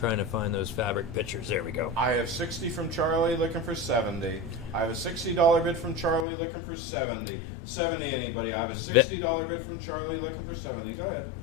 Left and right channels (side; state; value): right; drops out; at 6.2 s